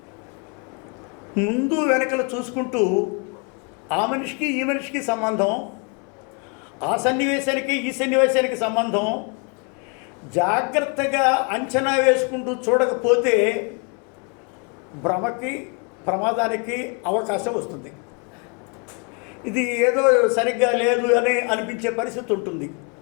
ముందు వెనకలు చూసుకుంటూ ఆ మనిషికి ఈ మనిషికి సంబంధం, ఆ సన్నివేశానికి ఈ సన్నివేశానికి సంబంధం జాగ్రత్తగా అంచనా వేసుకుంటూ చూడకపోతే భ్రమకి, ప్రమాదానికి అవకాశం వస్తుంది. ఇది ఏదో సరిగ్గా లేదు అని అనిపించే పరిస్థితి ఉంటుంది.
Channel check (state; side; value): quieter; right; 35.0 dB